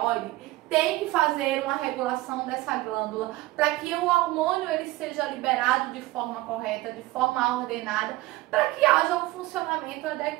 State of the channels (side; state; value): left; quieter; 18.3 dB